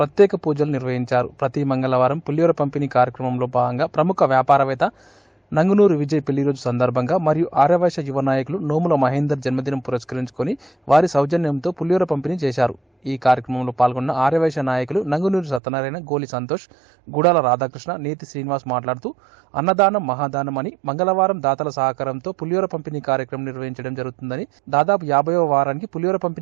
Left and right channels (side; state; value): left; drops out; at 15.6 s